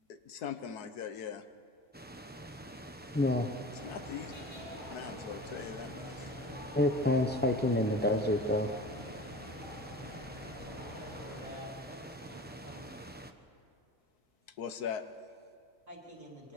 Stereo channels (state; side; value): normal; both; correlation 0.37